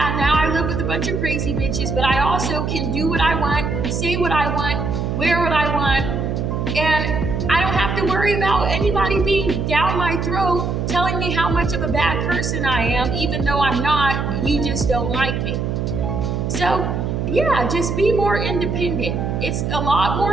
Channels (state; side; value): noise; right; hum, 1 dB below the sound